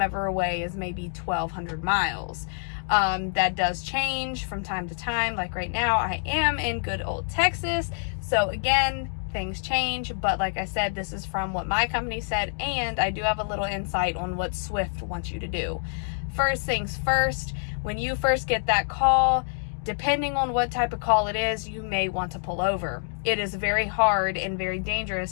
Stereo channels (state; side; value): silent; right; digital silence